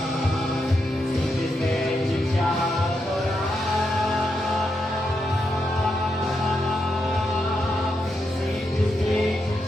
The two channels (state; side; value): normal; both; correlation 0.83